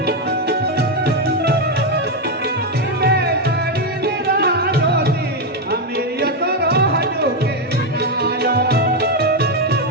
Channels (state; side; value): normal; both; correlation 0.05